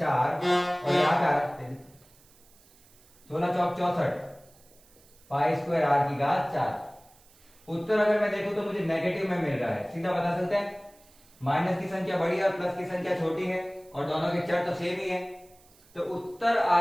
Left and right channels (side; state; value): right; noise; hiss, 28 dB below the sound